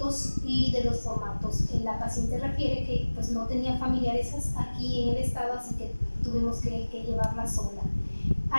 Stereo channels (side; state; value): both; inverted; correlation -1.00